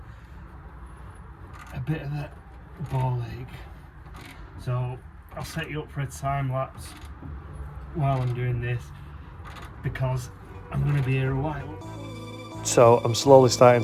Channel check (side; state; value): both; identical; correlation 1.00